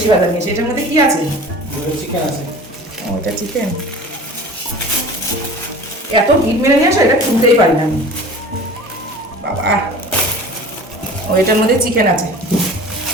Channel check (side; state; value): both; normal; correlation 0.41